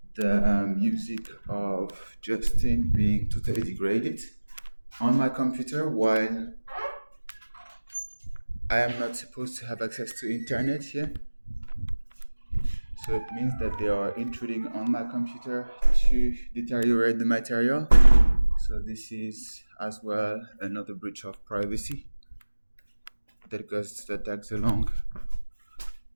the music of Justin being totally degraded on my computer while I am not supposed to have access to internet here. So it means that they are intruding on my computer to deteriorate the material. So this is as well another breach of privacy that tags along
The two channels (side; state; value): both; inverted; correlation -1.00